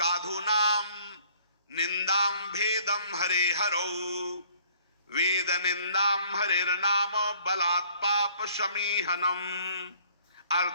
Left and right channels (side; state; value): both; inverted; correlation -0.57